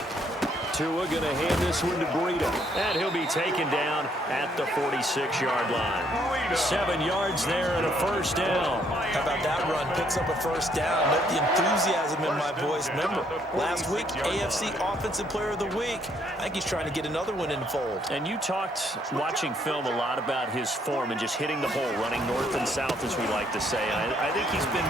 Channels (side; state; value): both; normal; correlation 0.69